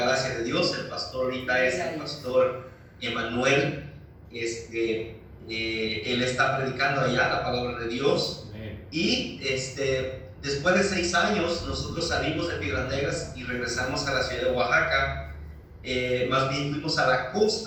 gracia de Dios. El pastor ahorita es el pastor Emanuel. Él está predicando allá la palabra de Dios. Y después de 6 años nosotros salimos de Piedras Negras y regresamos a la ciudad de Oaxaca. Más bien fuimos a la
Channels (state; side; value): identical; both; correlation 1.00